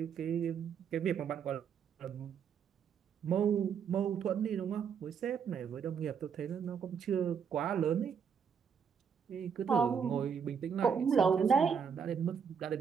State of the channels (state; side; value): quieter; left; 6.9 dB